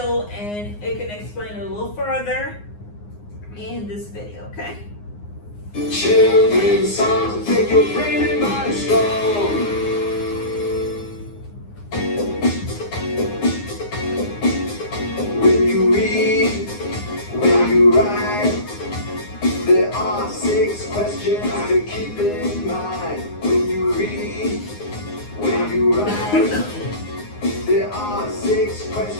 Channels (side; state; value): right; late; 9.7 ms